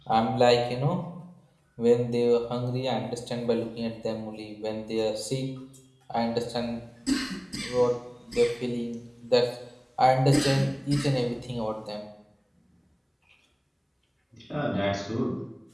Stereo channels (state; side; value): identical; both; correlation 1.00